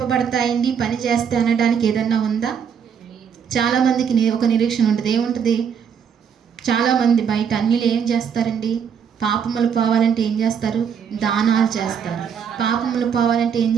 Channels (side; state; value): left; quieter; 7.3 dB